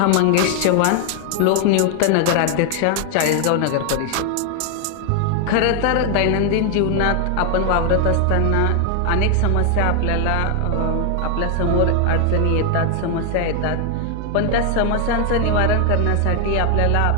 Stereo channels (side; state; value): both; different; correlation 0.00